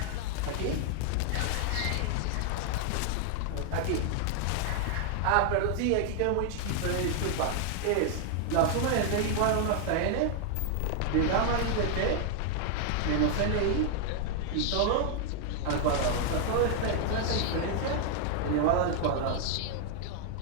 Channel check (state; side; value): different; both; correlation 0.00